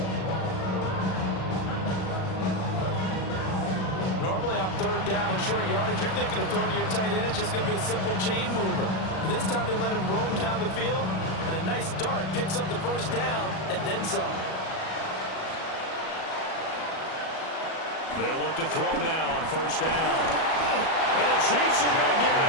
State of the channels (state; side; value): late; right; 37 ms